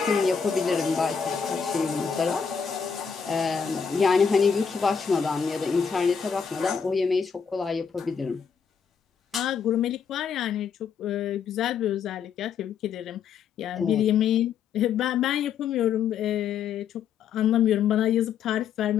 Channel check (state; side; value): quieter; right; 6.8 dB